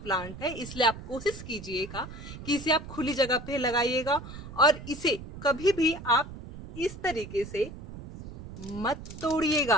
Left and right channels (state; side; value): noise; right; rumble, 12 dB below the sound